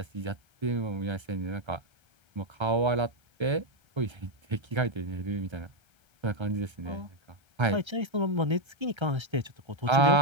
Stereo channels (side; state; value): left; late; 1.3 ms